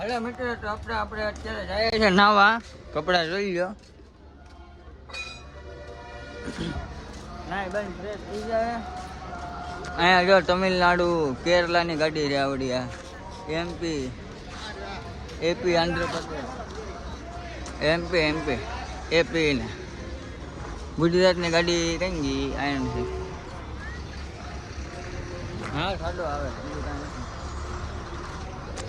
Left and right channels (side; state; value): both; identical; correlation 1.00